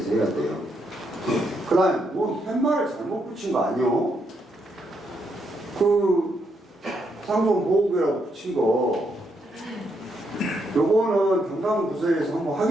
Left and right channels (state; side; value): normal; both; correlation 0.78